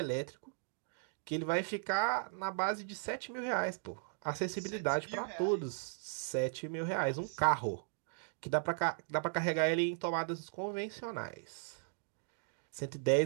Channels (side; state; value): left; silent; digital silence